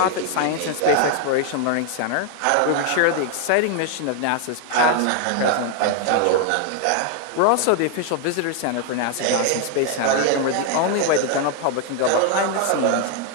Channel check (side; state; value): both; different; correlation 0.00